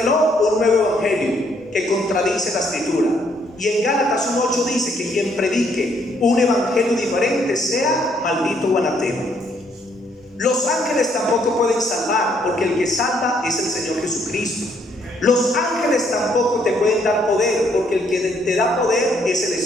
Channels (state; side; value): normal; both; correlation 0.69